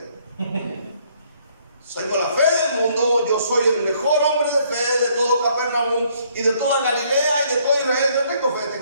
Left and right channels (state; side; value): inverted; both; correlation -0.65